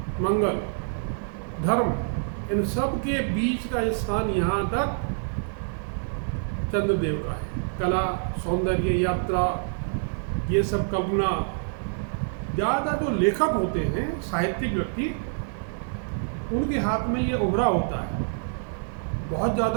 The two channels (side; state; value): left; silent; digital silence